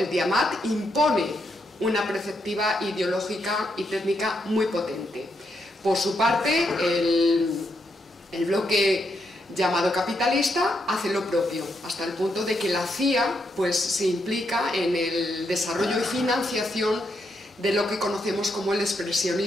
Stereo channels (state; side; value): normal; both; correlation 0.80